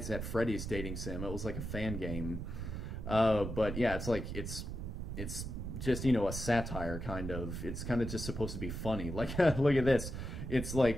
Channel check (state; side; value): noise; right; rumble, 5 dB below the sound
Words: at Freddy's dating sim. It was like a fan game. But yeah, it's like, it's just, you know, a satire kind of. It's kind of just supposed to be funny. Like, look at this. It's